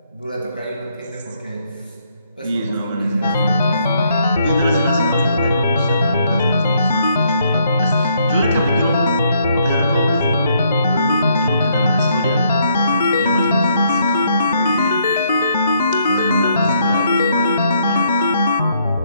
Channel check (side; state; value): both; inverted; correlation -0.71